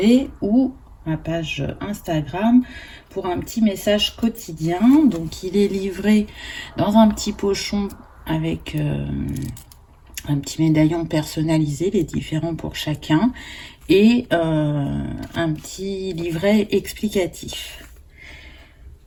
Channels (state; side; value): identical; both; correlation 1.00